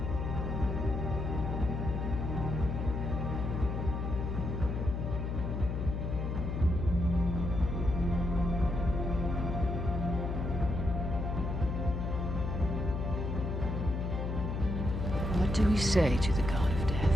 What do we say to the god of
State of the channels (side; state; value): left; noise; hum, 1 dB below the sound